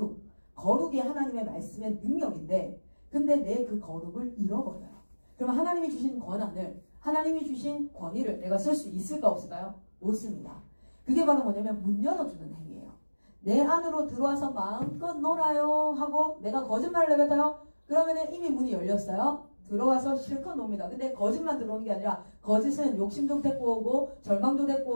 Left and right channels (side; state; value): both; inverted; correlation -1.00